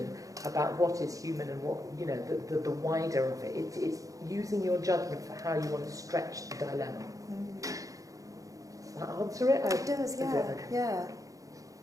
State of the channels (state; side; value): late; left; 0.16 ms